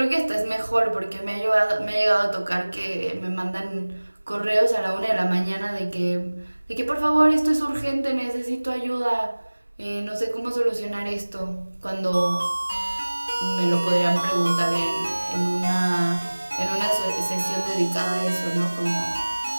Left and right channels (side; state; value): both; inverted; correlation -1.00